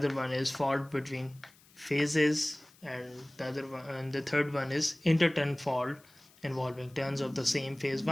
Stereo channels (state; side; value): noise; left; hiss, 28 dB below the sound